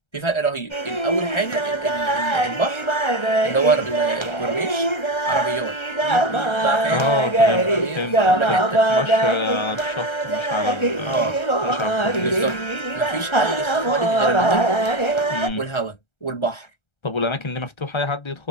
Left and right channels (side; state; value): right; late; 1.3 ms